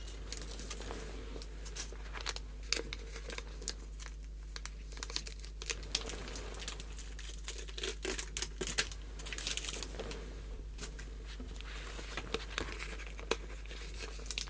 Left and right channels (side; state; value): both; identical; correlation 1.00